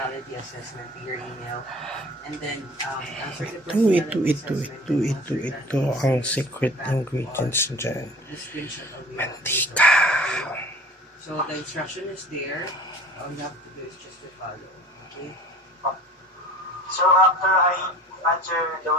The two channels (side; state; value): both; normal; correlation 0.43